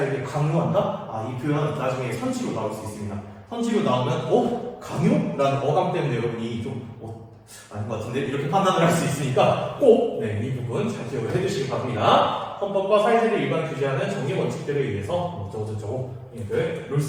강요한다? 이 표현 나중에 선지로 나올 수 있습니다. 선지로 나오면 강요라는 어감 때문에 여러분이 좀 아닌 것 같은데 이렇게 판단을 할 수 있으니까 꼭 이 부분 잘 기억을 해주시기 바랍니다. 헌법과 사회제를 일반 규제하는 정의 원칙들에 의해서 어쩌고저쩌고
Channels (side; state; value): both; identical; correlation 1.00